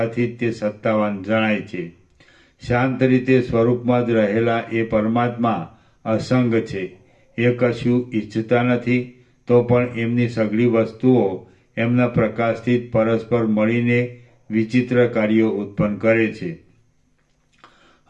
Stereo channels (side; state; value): both; identical; correlation 1.00